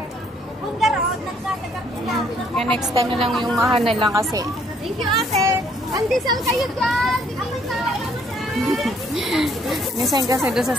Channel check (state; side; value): normal; both; correlation 0.65